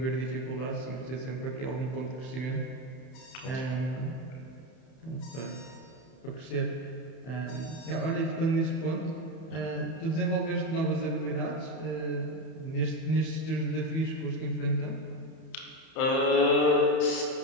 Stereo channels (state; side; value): late; right; 31 ms